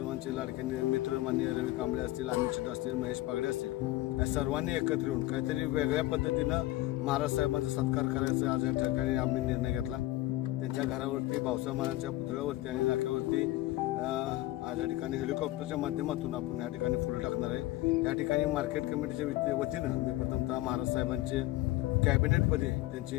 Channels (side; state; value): right; quieter; 17.1 dB